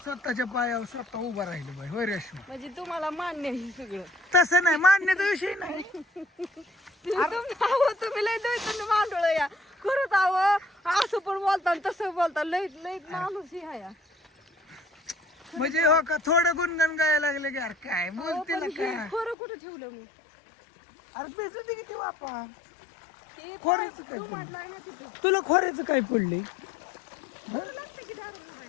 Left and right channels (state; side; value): drops out; right; at 19.4 s